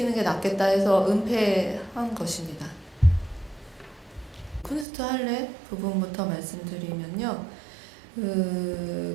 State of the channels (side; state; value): left; drops out; at 4.9 s